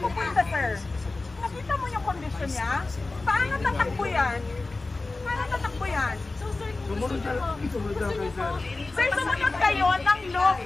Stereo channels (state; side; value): quieter; right; 3.4 dB